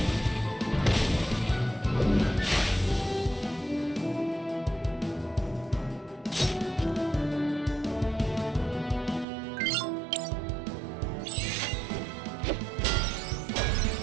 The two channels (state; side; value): drops out; left; at 9.2 s